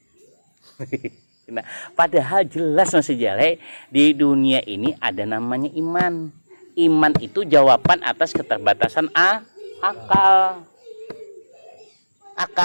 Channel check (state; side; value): inverted; both; correlation -1.00